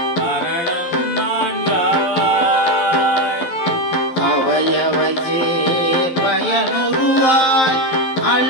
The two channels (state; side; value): late; right; 11 ms